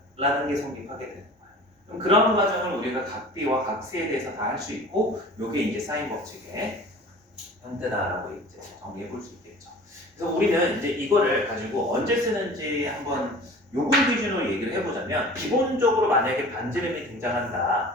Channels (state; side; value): normal; both; correlation 0.42